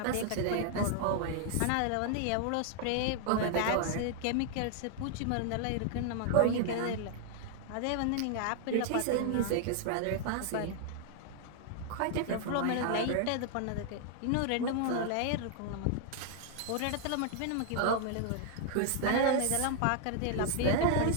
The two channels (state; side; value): different; both; correlation 0.00